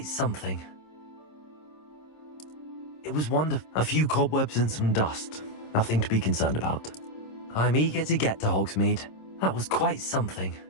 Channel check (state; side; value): late; right; 26 ms